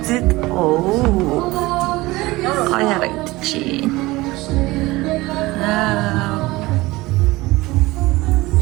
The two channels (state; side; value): quieter; left; 20.2 dB